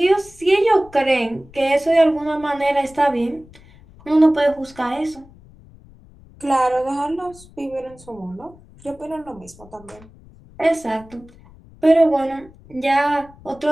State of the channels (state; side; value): noise; left; rumble, 24 dB below the sound